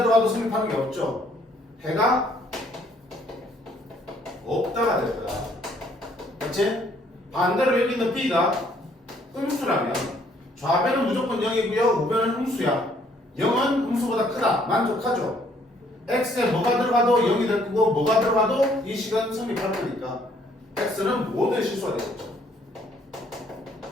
성립하는 게 없죠. 해가 없다가 될 거야. 그렇지? 반대로 여기 있는 B가 음수라면 좌변은 무조건 0이고요. 우변은 음수야. 0은 음수보다 크다. 만족하죠? X에 뭐가 들어가도 0이 될 거고 뭐가 들어가도 이 식은 성립할 거니까 X는 모든 실수가 되겠죠.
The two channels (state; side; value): normal; both; correlation 0.64